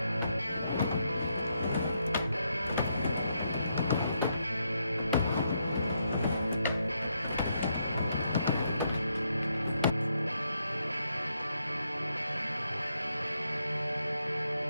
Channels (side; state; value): both; inverted; correlation -0.78